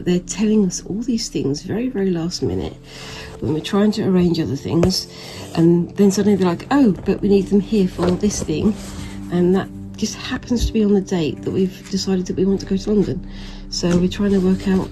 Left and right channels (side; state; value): both; identical; correlation 1.00